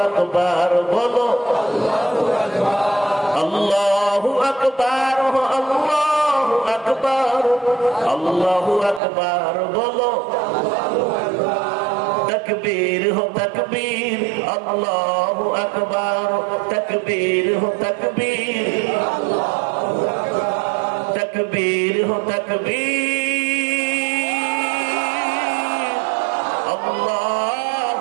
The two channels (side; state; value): left; drops out; at 9.0 s